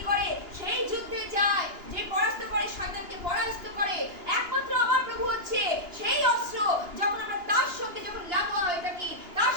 করে সেই যুদ্ধে যায়, যে পরাস্ত করে, শয়তানকে পরাস্ত করে। একমাত্র আমার প্রভু হচ্ছে সেই অস্ত্র। যখন আমরা তার সঙ্গে যখন লাগোয়া হয়ে থাকি, তার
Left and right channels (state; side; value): late; left; 2.9 ms